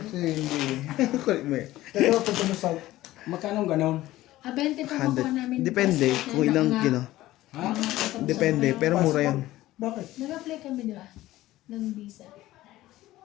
hindi. Kulit mo eh. Pero pag ano sa... Magkano ganon? 20 pa makuha namin. 100. Depende kung ilang kino. Ha? Depende, pero mura yan. Bakit? Nag-apply kami, di ba? Ng visa.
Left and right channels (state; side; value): quieter; right; 16.1 dB